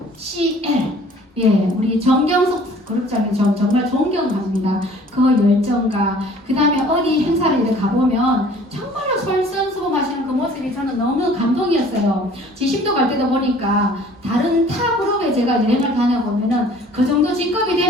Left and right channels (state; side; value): normal; both; correlation 0.52